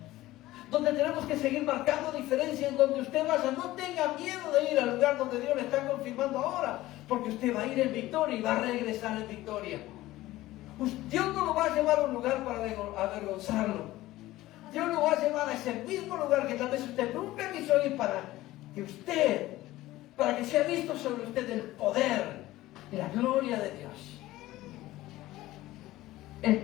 donde tenemos que seguir marcando diferencia. En donde usted vaya, no tenga miedo de ir al lugar donde Dios le está confirmando ahora, porque usted va a ir en victoria y va a regresar en victoria. Dios no lo va a llevar a un lugar para avergonzarlo. Dios lo va a llevar a ese mismo lugar que tal vez usted nunca quiso ir, para que sea visto sobre usted el poder y la gloria de Dios.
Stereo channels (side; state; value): right; quieter; 16.7 dB